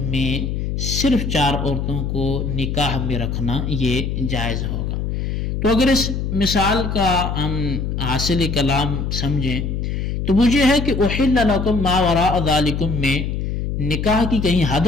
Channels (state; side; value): noise; left; hum, 2 dB below the sound